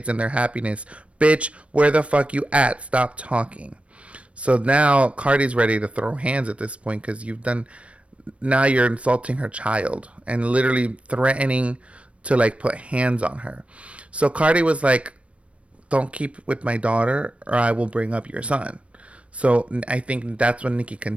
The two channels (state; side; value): late; left; 0.062 ms